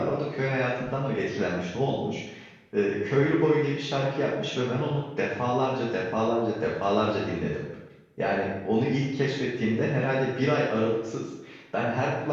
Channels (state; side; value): identical; both; correlation 1.00